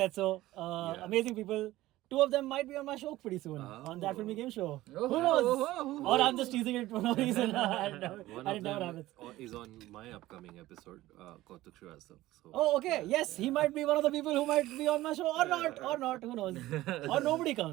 said so. Amazing people. 2 of them might be on my show pretty soon on that filmy game show. Who knows? Or I'm just teasing it for no reason. One and of it never them happens. is on my upcoming episode, Kautuk Shrivastava. So Oh, okay. Yes, he might be one of the people who might be on my show or not. Who knows? Or nobody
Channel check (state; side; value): quieter; left; 16.6 dB